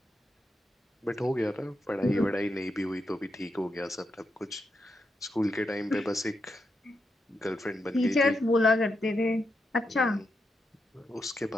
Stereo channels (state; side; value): normal; both; correlation 0.84